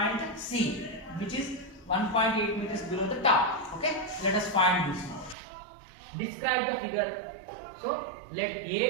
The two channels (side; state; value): left; drops out; at 5.4 s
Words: C, which is 1.8 meters below the top. Okay, let us find this now. Describe the figure. So let